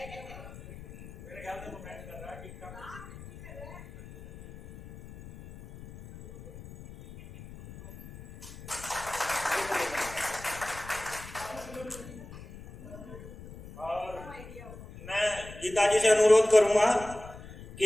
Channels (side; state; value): left; noise; rumble, 15 dB below the sound